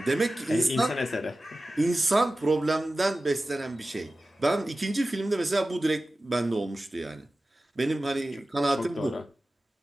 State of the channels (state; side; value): normal; both; correlation 0.95